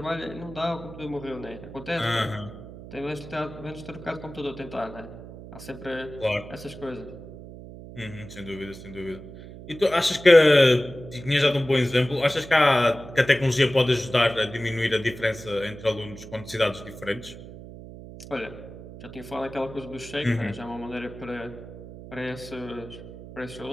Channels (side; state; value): right; noise; hum, 14 dB below the sound